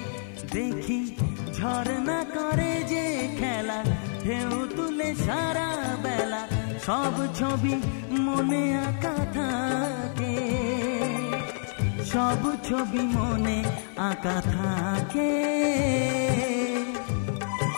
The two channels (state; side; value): silent; right; 60 dB below the other